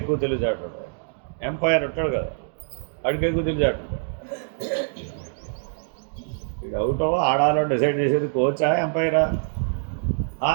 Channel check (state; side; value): silent; left; digital silence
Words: ఎక్కువ తెలివితేటలు ఉంటాయి. ఎంపైర్ ఉంటాడు కదా, వాడికి ఎక్కువ తెలివితేటలు ఉంటాయి. ఇది అవుట్ ఆడాలో డిసైడ్ చేసేది కోచా ఎంపైరా?